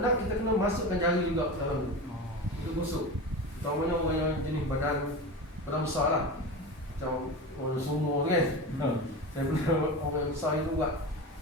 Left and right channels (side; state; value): both; normal; correlation 0.27